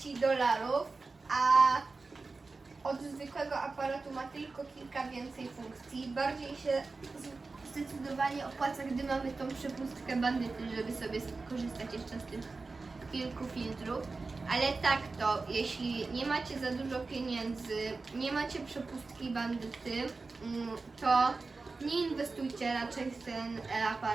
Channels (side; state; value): left; quieter; 3.9 dB